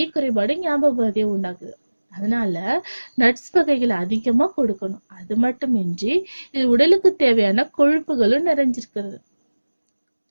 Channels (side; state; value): both; inverted; correlation -1.00